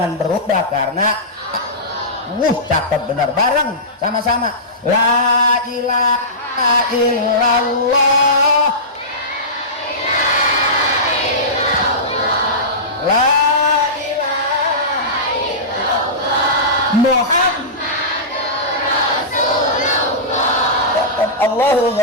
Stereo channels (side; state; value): both; normal; correlation -0.19